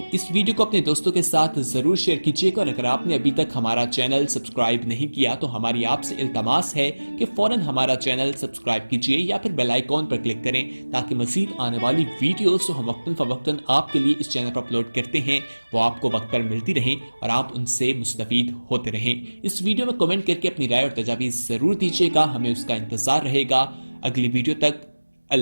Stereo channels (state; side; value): inverted; both; correlation -1.00